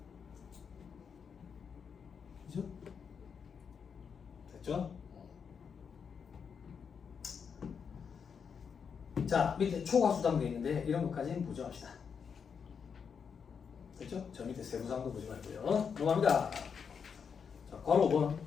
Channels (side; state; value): right; quieter; 6.5 dB